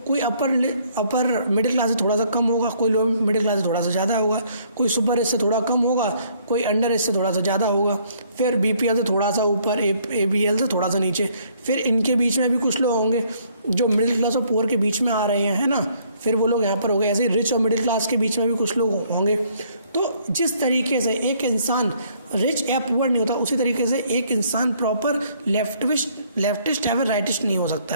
कोई अपर मिडिल क्लास से थोड़ा सा कम होगा, कोई लोअर मिडिल क्लास से थोड़ा सा ज़्यादा होगा, कोई सुपर रिच से थोड़ा कम होगा, कोई अंडर रिच से थोड़ा सा ज़्यादा होगा, फिर BPL से थोड़ा सा ऊपर, ABL से थोड़ा सा नीचे। फिर इनके बीच में भी कुछ लोग होंगे जो मिडिल क्लास और पुअर के बीच में आ रहे हैं, है ना। फिर वो लोग यहाँ पर हो गए। ऐसे ही रिच और मिडिल क्लास के बीच में भी कुछ लोग होंगे। तो जिस तरीके से एक इंसान रिच या पुअर नहीं होता, उसी तरीके से एक इंसान प्रॉपर लेफ्टिस्ट या फिर राइटिस्ट नहीं हो सकता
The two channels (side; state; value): both; inverted; correlation -0.64